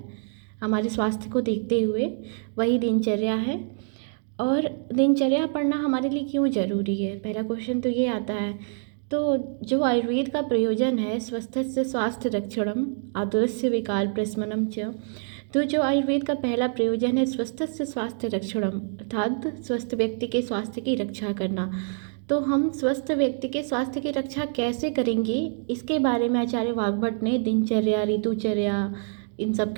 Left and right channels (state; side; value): silent; left; 61 dB below the other